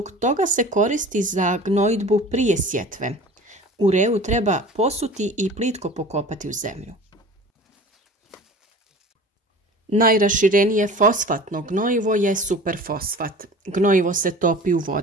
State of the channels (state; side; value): normal; both; correlation 0.41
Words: toga se koristi za gnojidbu prije sjetve. Ureu treba posuti i plitko pokopati u zemlju. Najraširenije fosfatno gnojivo je superfosfat. Gnojivo se topi u